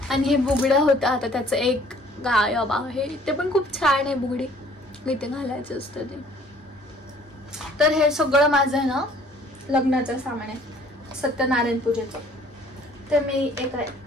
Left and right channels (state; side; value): normal; both; correlation 0.56